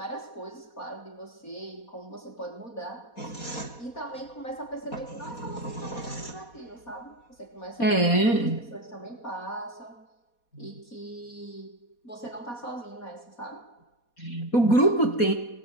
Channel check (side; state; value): right; late; 4.2 ms